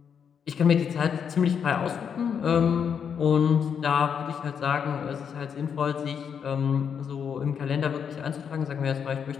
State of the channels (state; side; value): quieter; right; 7.3 dB